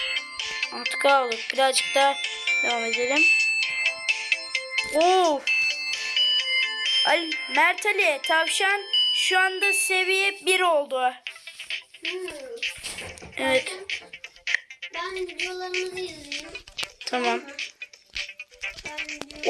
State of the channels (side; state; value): both; identical; correlation 1.00